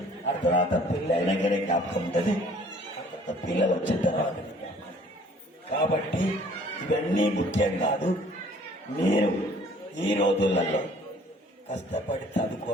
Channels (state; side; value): normal; both; correlation 0.55